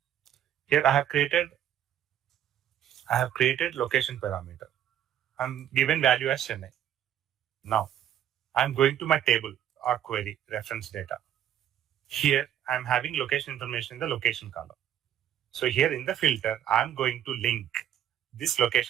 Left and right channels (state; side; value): quieter; left; 10.7 dB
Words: Here I have created location parameter. I'm given value as Chennai. Now, I'm going to my table or query reference data. Here, I'm having location information in the location column. So here in the filter, I'm going to link this